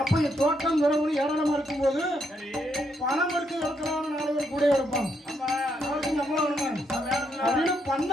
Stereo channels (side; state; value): both; normal; correlation 0.76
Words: அப்ப இந்த தோட்டம் துறவு ஏராளமா இருக்கும்போது பணம் எடுத்து இருக்கிறான்னு 4 பேர் கூட இருப்பாங்க. அப்படின்னு